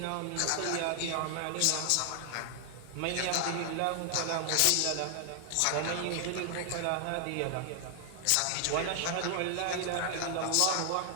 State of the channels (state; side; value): different; both; correlation 0.00